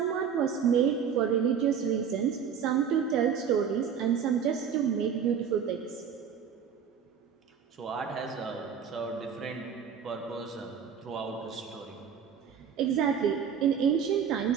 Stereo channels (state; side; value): quieter; left; 7.4 dB